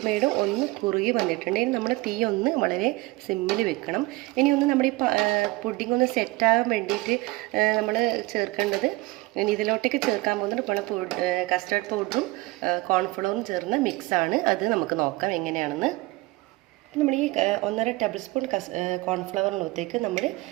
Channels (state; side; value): quieter; left; 21.6 dB